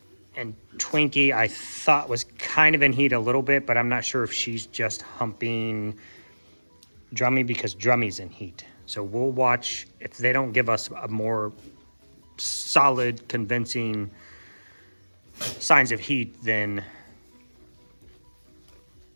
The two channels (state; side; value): inverted; both; correlation -1.00